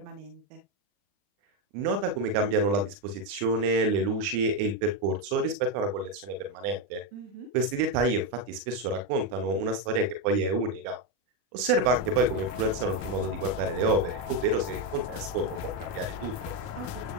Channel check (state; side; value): late; left; 40 ms